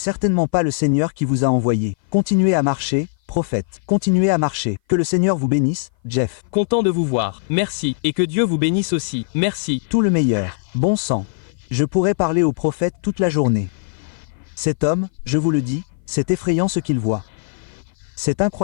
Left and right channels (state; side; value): silent; right; 58 dB below the other